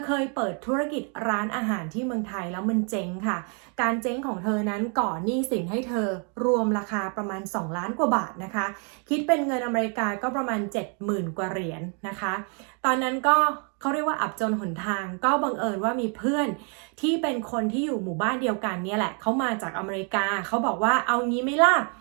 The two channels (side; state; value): left; quieter; 38.9 dB